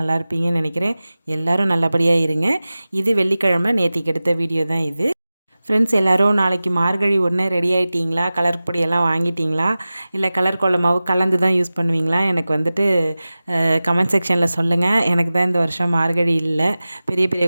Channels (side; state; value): both; inverted; correlation -0.96